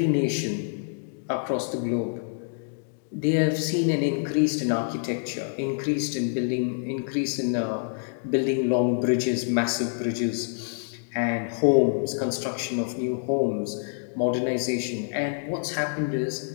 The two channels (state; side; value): silent; right; digital silence